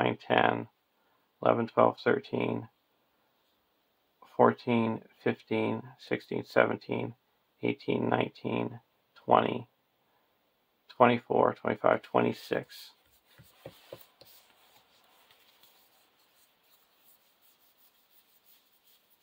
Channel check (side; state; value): both; identical; correlation 1.00